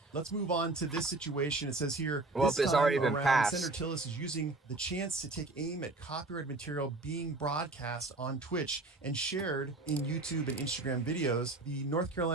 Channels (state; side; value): quieter; left; 3.1 dB